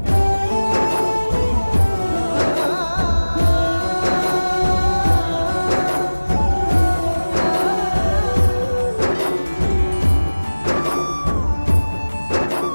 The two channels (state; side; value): inverted; both; correlation -1.00